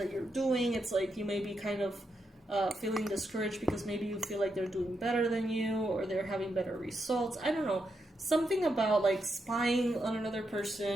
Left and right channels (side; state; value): both; normal; correlation 0.83